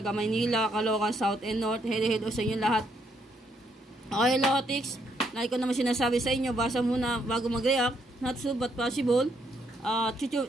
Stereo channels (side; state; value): both; normal; correlation 0.73